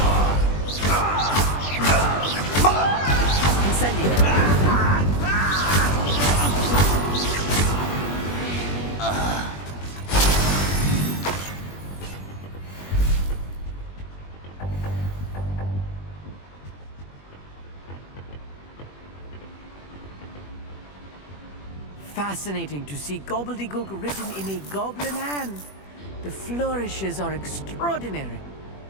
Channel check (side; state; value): right; late; 21 ms